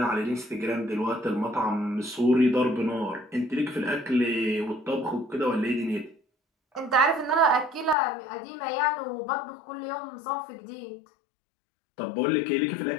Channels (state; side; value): drops out; right; at 8.0 s